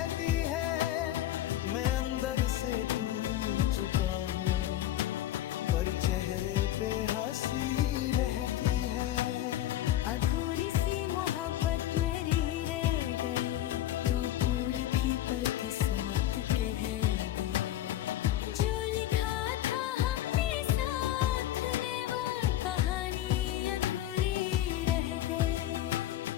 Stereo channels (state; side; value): quieter; right; 13.1 dB